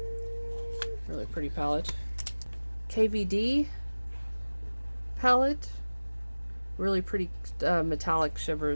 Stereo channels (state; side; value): inverted; both; correlation -1.00